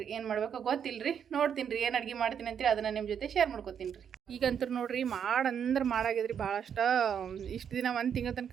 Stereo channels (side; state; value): left; quieter; 8.0 dB